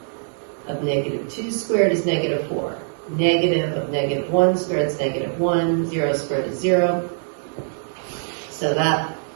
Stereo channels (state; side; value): silent; left; digital silence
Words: of -2 squared is -4. Negative of -1 squared is -1. 0 squared is 0. So that